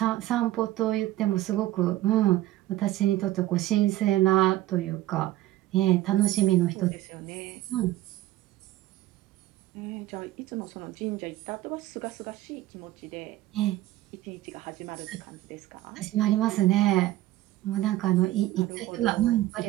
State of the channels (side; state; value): left; quieter; 15.5 dB